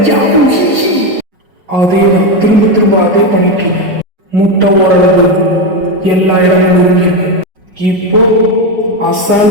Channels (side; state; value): left; late; 5.4 ms